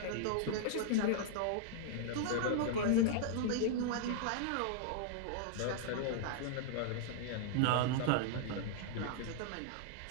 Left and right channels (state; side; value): different; both; correlation -0.01